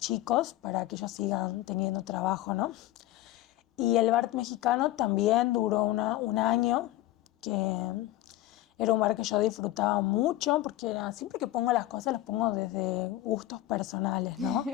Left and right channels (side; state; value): right; quieter; 15.5 dB